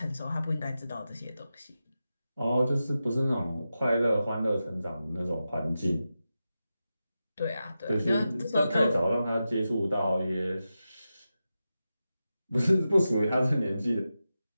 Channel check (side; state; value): both; inverted; correlation -0.91